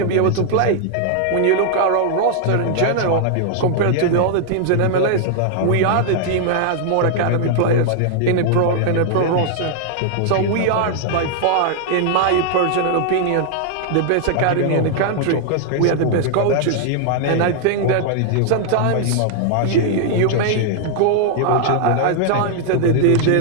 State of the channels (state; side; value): different; both; correlation 0.00